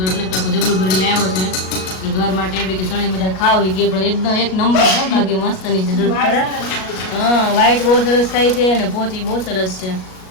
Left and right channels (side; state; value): right; late; 38 ms